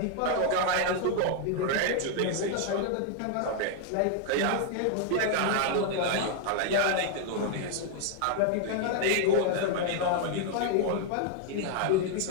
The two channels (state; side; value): different; both; correlation 0.00